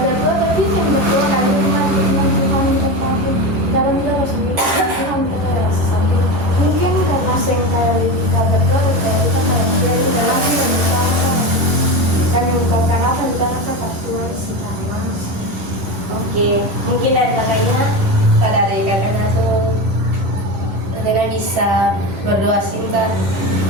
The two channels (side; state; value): left; late; 11 ms